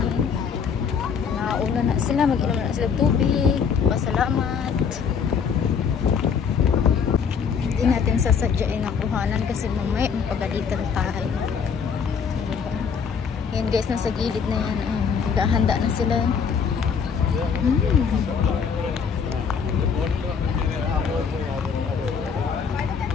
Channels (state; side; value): quieter; right; 6.5 dB